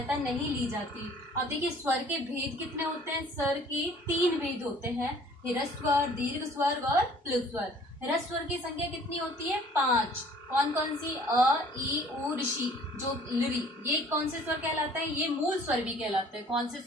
नहीं ली जाती। अब देखिए स्वर के भेद कितने होते हैं? स्वर के 3 भेद होते हैं, ह्रस्व स्वर, दीर्घ स्वर और प्लुत स्वर। ह्रस्व स्वर की संख्या कितनी होती है? 5। कौन कौन सी? अ, ई, उ, ऋषि, जो लरी। ये कौन से स्वर कहलाते हैं? ये मूल स्वर भी कहलाते हैं। कौन से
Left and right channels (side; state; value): both; normal; correlation 0.54